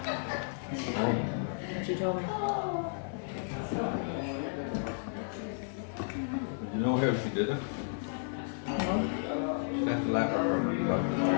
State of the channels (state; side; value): silent; right; 56 dB below the other